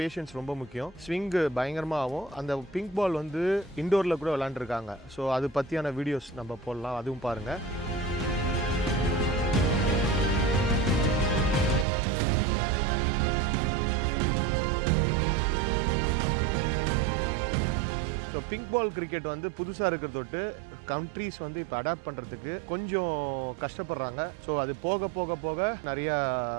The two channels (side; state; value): left; drops out; at 11.9 s